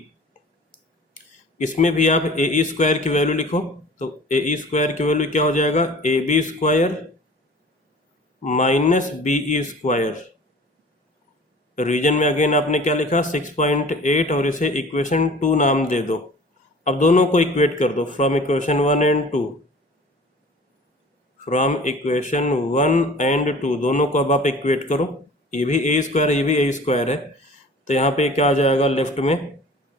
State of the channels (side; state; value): both; normal; correlation 0.45